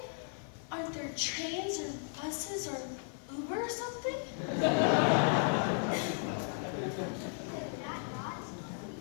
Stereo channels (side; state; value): right; silent; 54 dB below the other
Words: Aren't there trains or buses or Uber or something?